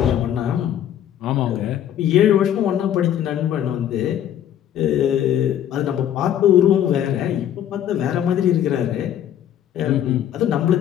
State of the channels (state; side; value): quieter; right; 10.5 dB